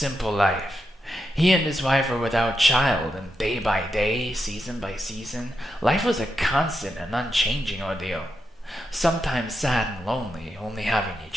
life. He and his wife were without child, and day by day, season by season, life was a constant and unchanging ordeal. Sometimes sad and lonely, only having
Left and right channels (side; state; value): both; normal; correlation 0.86